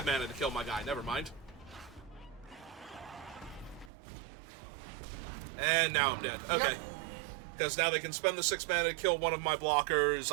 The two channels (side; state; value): left; drops out; at 3.9 s